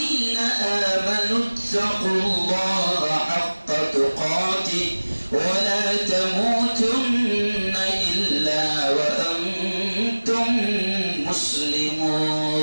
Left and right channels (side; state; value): both; inverted; correlation -1.00